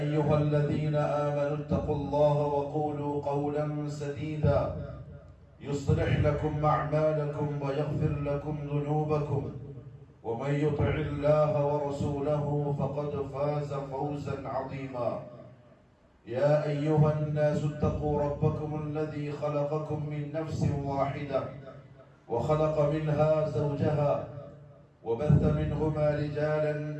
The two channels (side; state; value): both; identical; correlation 1.00